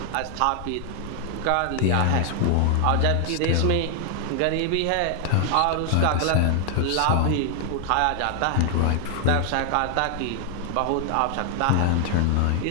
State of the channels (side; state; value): both; different; correlation 0.00